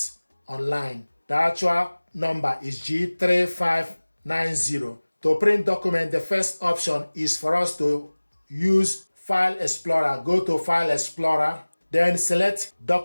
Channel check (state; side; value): inverted; both; correlation -1.00